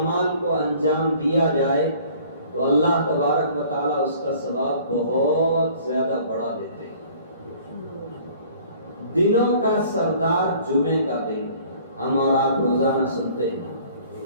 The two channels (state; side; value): inverted; both; correlation -0.53